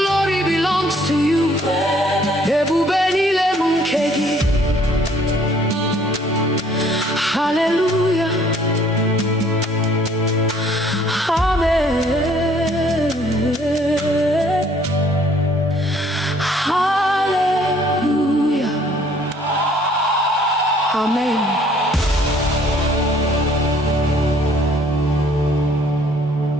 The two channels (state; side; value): normal; both; correlation 0.60